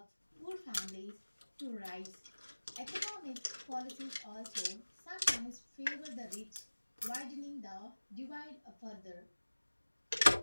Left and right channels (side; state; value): both; inverted; correlation -1.00